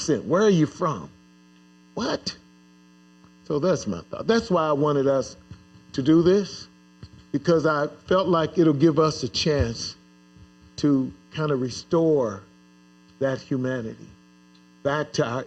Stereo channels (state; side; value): identical; both; correlation 1.00